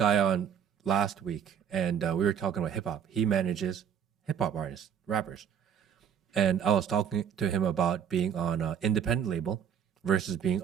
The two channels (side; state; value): left; quieter; 8.4 dB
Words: on last week, and we were talking about hip hop. He manages hip hop artists, rappers, and I was talking to him about being on an independent label versus being